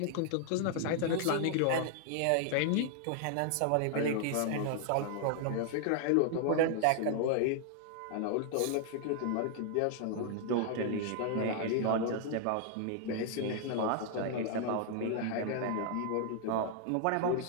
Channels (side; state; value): both; different; correlation 0.00